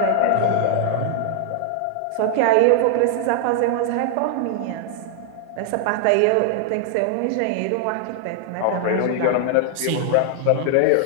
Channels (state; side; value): different; both; correlation 0.00